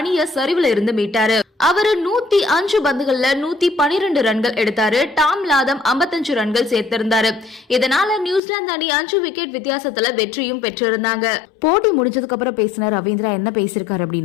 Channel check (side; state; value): right; drops out; at 8.4 s